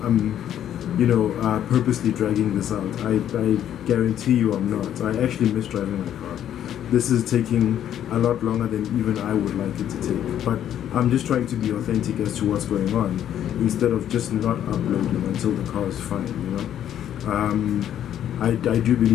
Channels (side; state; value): right; quieter; 10.5 dB